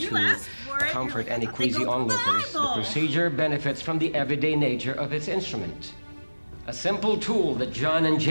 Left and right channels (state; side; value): inverted; both; correlation -1.00